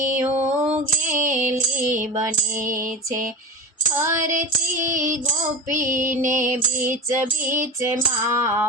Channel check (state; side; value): normal; both; correlation 0.29